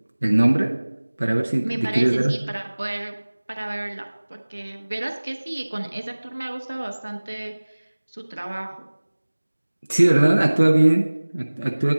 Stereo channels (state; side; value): inverted; both; correlation -1.00